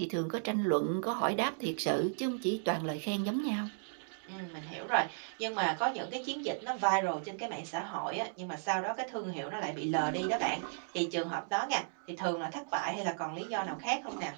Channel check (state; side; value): silent; left; digital silence